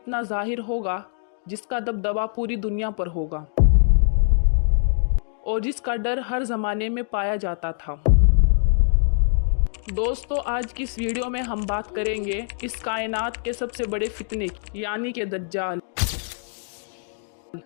ज़ाहिर होगा जिसका दबदबा पूरी दुनिया पर होगा और जिसका डर हर ज़माने में पाया जाता था। दोस्तों, आज की इस वीडियो में हम बात करेंगे इस कायनात के सबसे बड़े फितने यानी कि दज्जाल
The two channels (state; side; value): silent; right; digital silence